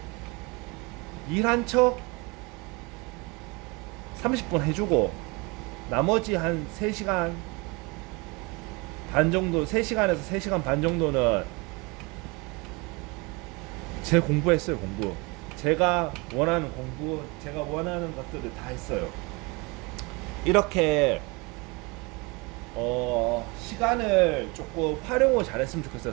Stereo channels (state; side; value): quieter; left; 27.3 dB